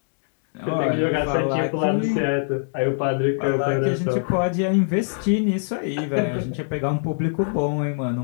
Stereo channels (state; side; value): silent; right; digital silence